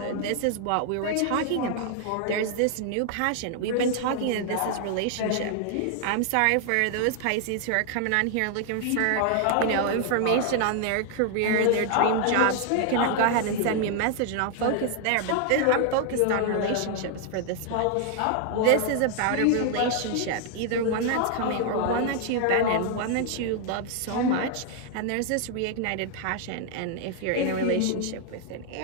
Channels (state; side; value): different; both; correlation 0.00